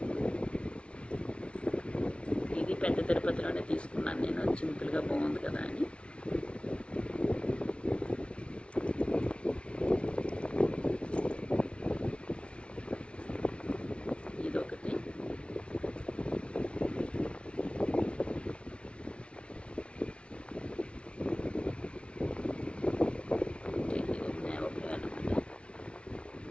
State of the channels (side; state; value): right; late; 0.059 ms